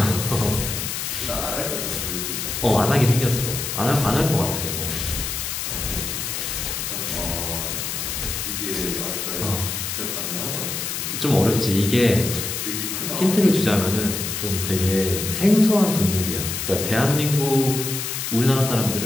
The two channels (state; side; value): noise; left; hiss, 3 dB below the sound